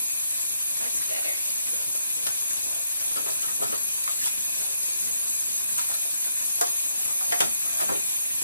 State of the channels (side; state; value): both; inverted; correlation -0.79